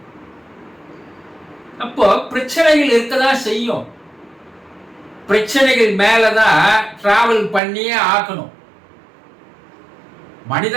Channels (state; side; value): drops out; left; at 7.6 s